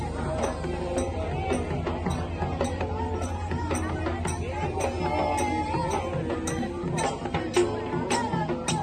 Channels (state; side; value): identical; both; correlation 1.00